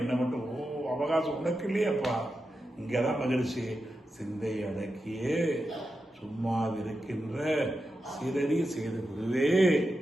மட்டும் அவகாசம் உனக்கு இல்லையாப்பா. இங்கதான் மகிழ்ச்சி. சிந்தை அடக்கியே சும்மாவிருக்கின்ற சிறறி செய்து விடுவே.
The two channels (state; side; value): normal; both; correlation 0.89